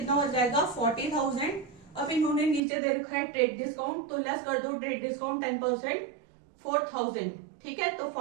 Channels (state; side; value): drops out; left; at 2.6 s